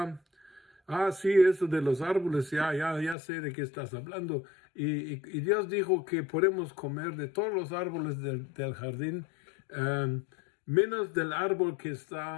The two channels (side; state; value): right; drops out; at 3.2 s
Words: sí, eso de los árboles, ya sé de qué estás hablando. Y Dios dijo que podemos comer de todos los árboles del jardín, menos del árbol que